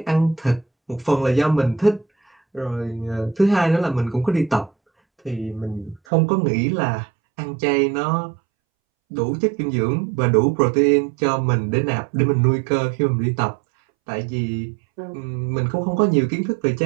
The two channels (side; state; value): left; drops out; at 6.0 s